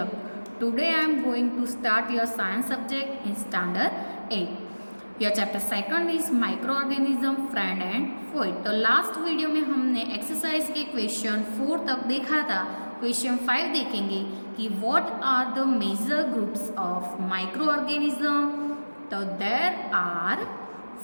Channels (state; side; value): inverted; both; correlation -1.00